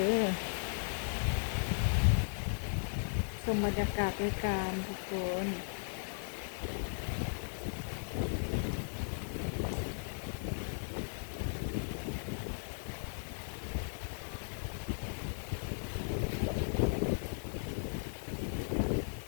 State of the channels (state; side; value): silent; right; digital silence